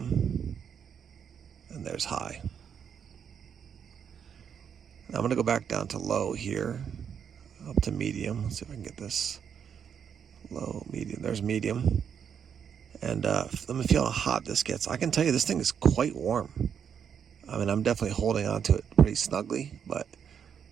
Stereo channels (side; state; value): left; quieter; 7.7 dB